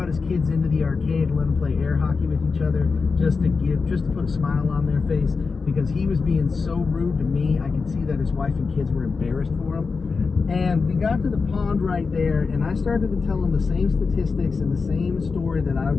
his kids into the arcade and let them play air hockey with each other just to put a smile on their face, because he was being so rude to me. I could see that his wife and kids were embarrassed for him. And we got to the pond right there, and I started to tell him the same statistics and the same story that I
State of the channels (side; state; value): right; quieter; 4.7 dB